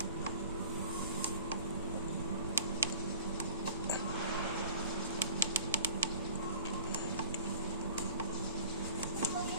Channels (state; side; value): inverted; both; correlation -0.43